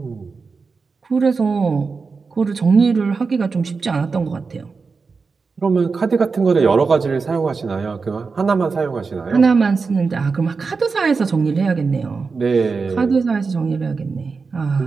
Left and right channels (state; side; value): quieter; left; 4.7 dB